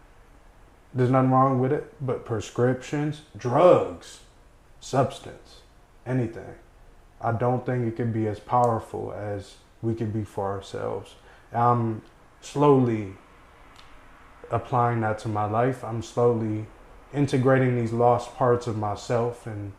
there's nothing wrong with it, but prescriptions, drugs, substance, anything, I don't think it could be as powerful as we could be for ourselves. I'm slowly applying that to my life. I'm slowly integrating these lost parts of myself and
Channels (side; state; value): both; identical; correlation 1.00